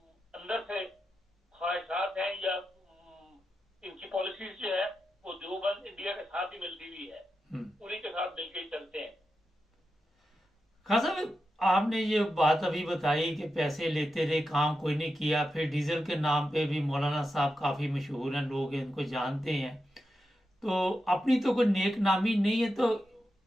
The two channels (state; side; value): normal; both; correlation 0.89